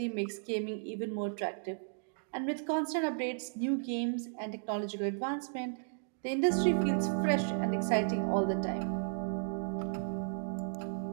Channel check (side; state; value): left; silent; digital silence